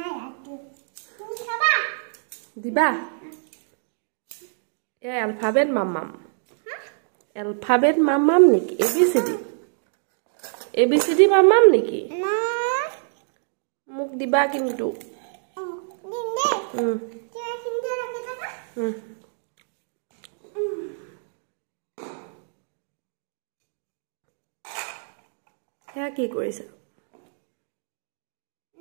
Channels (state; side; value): silent; left; digital silence